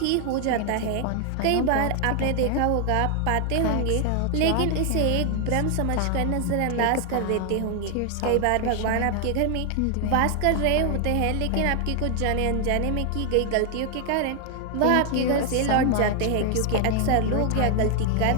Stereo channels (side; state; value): both; different; correlation 0.00